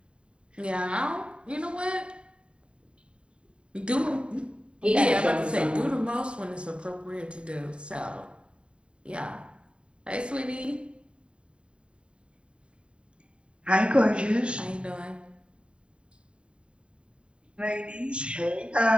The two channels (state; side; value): late; left; 0.055 ms